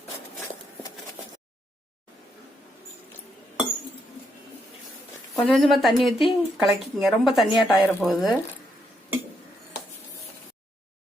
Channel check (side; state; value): both; normal; correlation 0.78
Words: கொஞ்சம் கொஞ்சமா தண்ணி ஊற்றி கலக்கிங்க. ரொம்ப தண்ணியாட்ட ஆயிர போகுது.